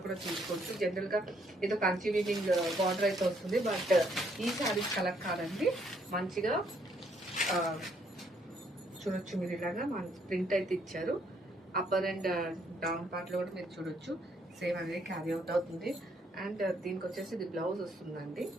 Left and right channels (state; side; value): normal; both; correlation 0.70